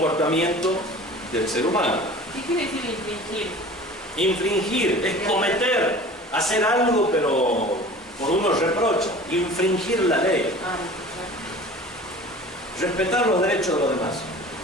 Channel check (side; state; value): both; normal; correlation 0.41